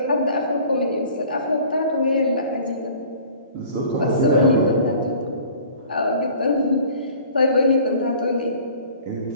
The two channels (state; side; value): inverted; both; correlation -0.48